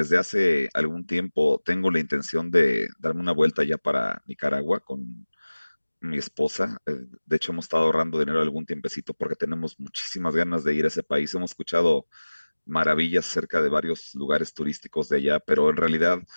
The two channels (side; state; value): both; inverted; correlation -1.00